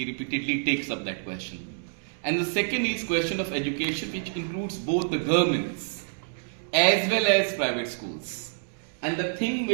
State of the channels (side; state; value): left; silent; digital silence